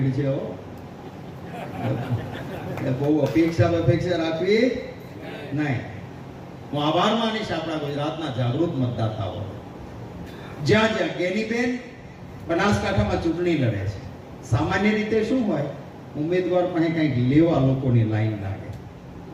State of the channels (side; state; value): both; identical; correlation 1.00